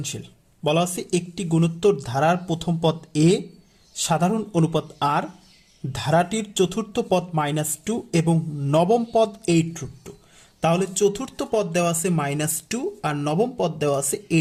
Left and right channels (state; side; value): identical; both; correlation 1.00